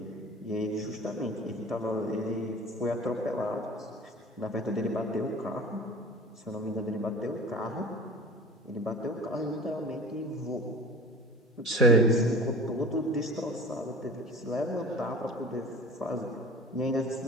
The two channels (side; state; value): both; normal; correlation 0.40